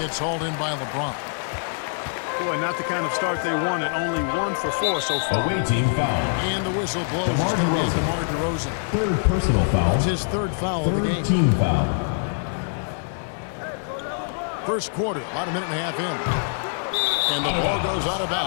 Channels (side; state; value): right; silent; digital silence